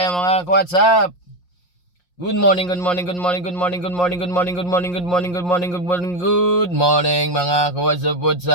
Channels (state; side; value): late; right; 5.6 ms